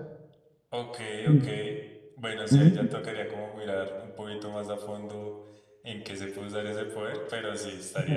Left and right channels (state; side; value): identical; both; correlation 1.00